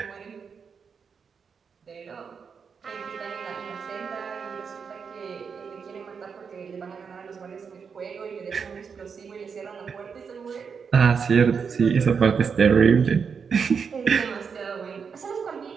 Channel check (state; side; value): quieter; left; 6.1 dB